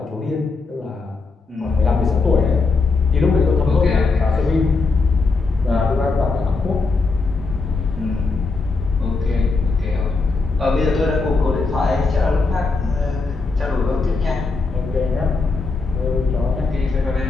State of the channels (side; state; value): right; quieter; 4.0 dB